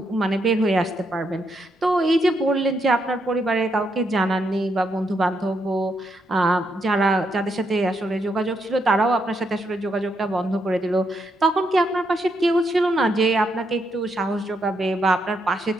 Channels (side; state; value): both; normal; correlation 0.79